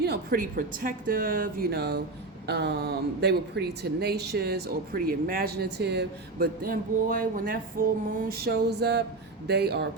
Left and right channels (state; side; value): quieter; left; 3.3 dB